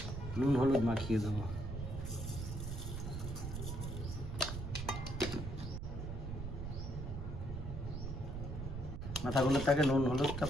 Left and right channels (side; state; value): right; noise; rumble, 5 dB below the sound